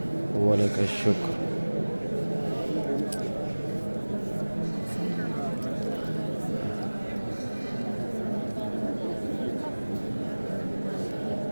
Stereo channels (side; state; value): both; inverted; correlation -1.00